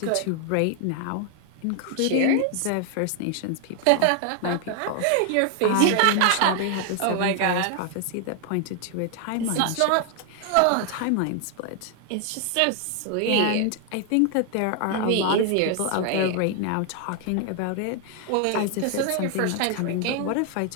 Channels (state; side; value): different; both; correlation 0.00